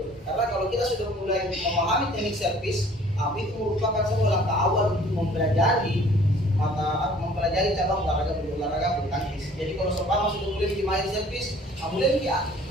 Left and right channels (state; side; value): normal; both; correlation 0.53